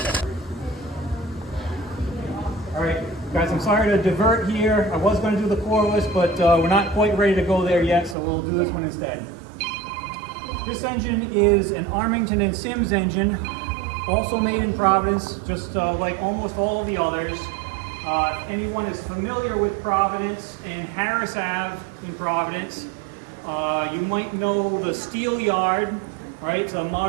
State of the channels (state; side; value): drops out; left; at 8.2 s